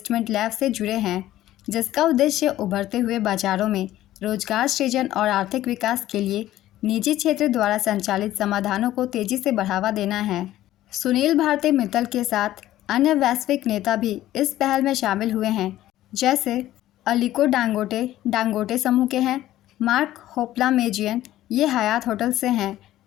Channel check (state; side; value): quieter; right; 14.2 dB